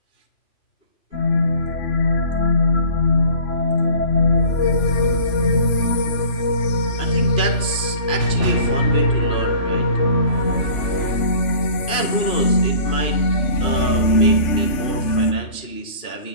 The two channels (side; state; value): right; late; 3.5 ms